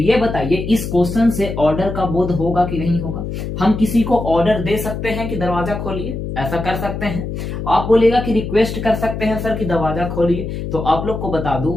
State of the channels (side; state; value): left; noise; hum, 5 dB below the sound